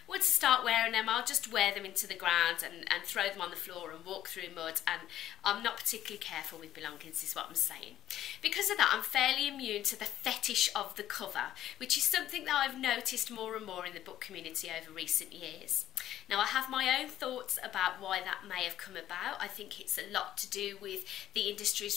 once I start wearing them, I'll just wear them into the ground and throw them on the floor and walk through mud, and I'm not particularly careful with belongings, is what I'm saying. Because of that, I'm fairly immune to the fetish of the cover, which is something that I've noticed more and more in the book community over recent years. Now, I have my own thoughts about why that may have come about. I think it's a lot to do with the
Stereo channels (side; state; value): right; quieter; 12.4 dB